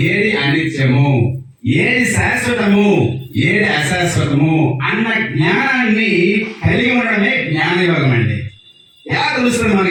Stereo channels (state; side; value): identical; both; correlation 1.00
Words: ఏది అనిత్యము, ఏది శాశ్వతము, ఏది అశాశ్వతము అన్న జ్ఞానాన్ని కలిగి ఉండడమే జ్ఞానయోగం అండి. ఎలా తెలుస్తుంది